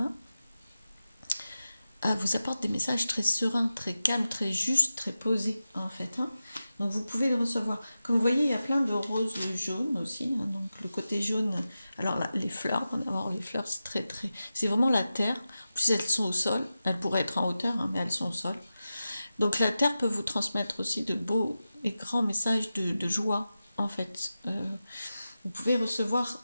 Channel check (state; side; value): inverted; both; correlation -0.93